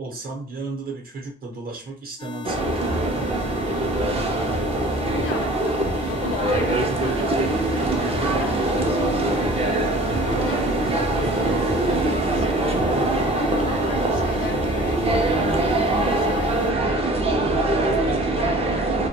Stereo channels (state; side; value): normal; both; correlation 0.46